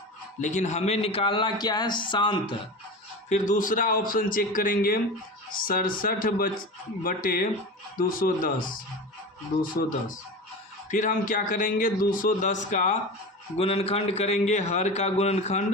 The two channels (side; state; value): both; normal; correlation 0.28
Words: लेकिन हमें निकालना क्या है, शांत। फिर दूसरा ऑप्शन चेक करेंगे 67/210। फिर हम क्या करेंगे, 210 का गुणनखंड करेंगे, हर का